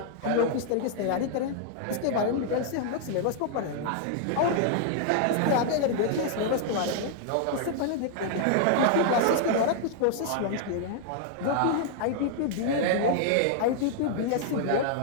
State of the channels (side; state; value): both; different; correlation -0.01